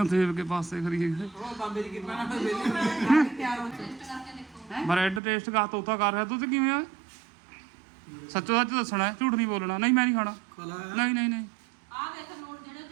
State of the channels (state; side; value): drops out; left; at 5.2 s